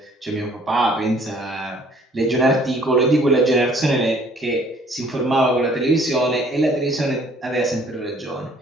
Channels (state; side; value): normal; both; correlation 0.58